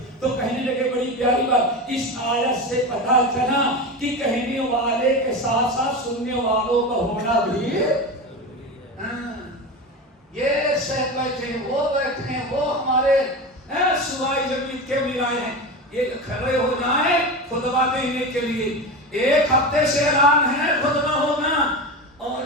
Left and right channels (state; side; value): normal; both; correlation 0.23